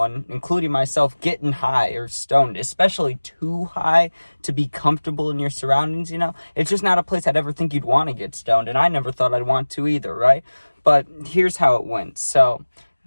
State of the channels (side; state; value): both; inverted; correlation -1.00